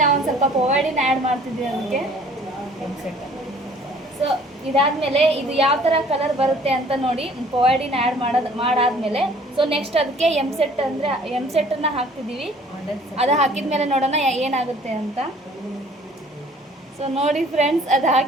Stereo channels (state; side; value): normal; both; correlation 0.54